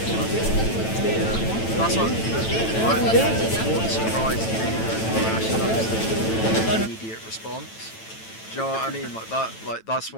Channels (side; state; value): right; late; 9.0 ms